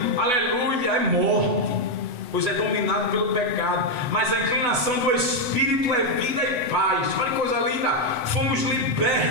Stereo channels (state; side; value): late; left; 8.1 ms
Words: aleluia, é morte, pois é dominado pelo pecado. Mas a inclinação do Espírito é vida e paz. Olha que coisa linda. Fomos